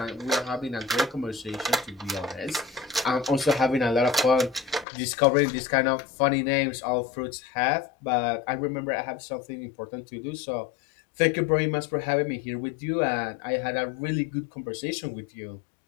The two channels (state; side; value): drops out; right; at 4.9 s